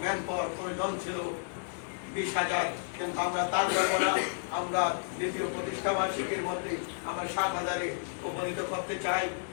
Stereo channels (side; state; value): right; silent; digital silence